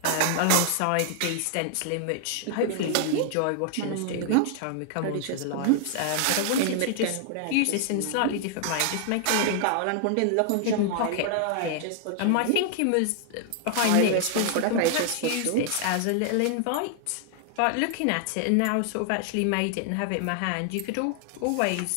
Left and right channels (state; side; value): different; both; correlation 0.00